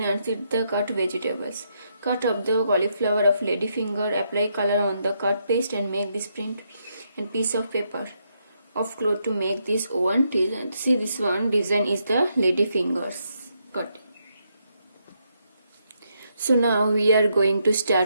and sit the cut vegetables. Cut up the cauliflower of ladyfinger, apply color on the cut paste and make this print and piece of paper of cloth to make this one design. See this one design is the ladyfingers cut. So now we are going to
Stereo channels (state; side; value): inverted; both; correlation -0.78